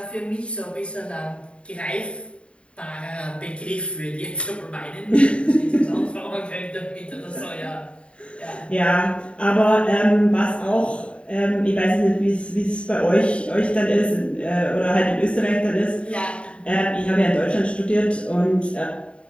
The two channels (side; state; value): right; late; 0.059 ms